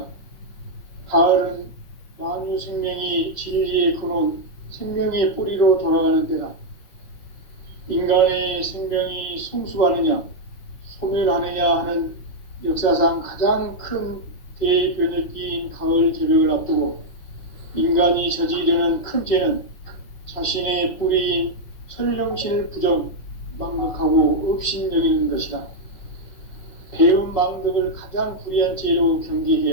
가을은 만유 생명이 진리의 근원, 생명의 뿌리로 돌아가는 때다. 인간의 생명이 성숙하느냐, 소멸하느냐 하는 역사상 가장 큰 대변혁기인 가을 개벽을 앞두고 인간이 저지르는 큰 죄는 자신의 뿌리인 설령신을 부정, 망각하고 업신여기는 것이다. 배음 망덕을 가장 불의한 죄로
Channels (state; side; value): late; right; 5.8 ms